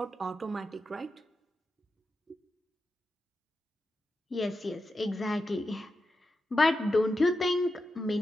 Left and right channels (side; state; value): both; normal; correlation 0.89